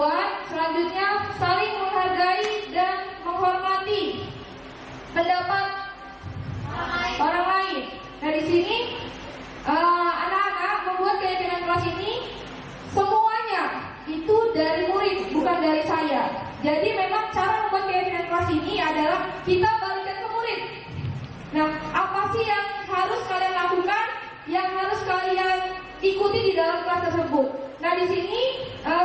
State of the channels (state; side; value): identical; both; correlation 1.00